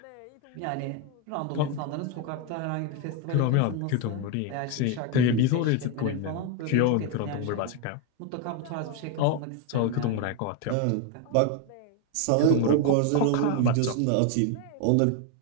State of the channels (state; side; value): different; both; correlation 0.01